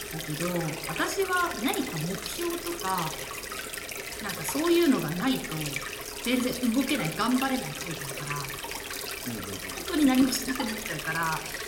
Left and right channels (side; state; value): both; identical; correlation 1.00